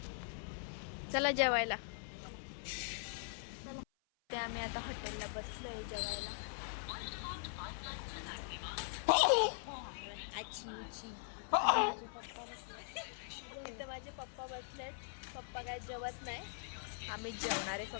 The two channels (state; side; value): silent; right; 50 dB below the other